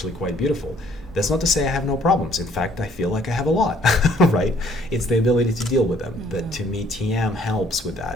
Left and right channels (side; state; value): both; normal; correlation 0.61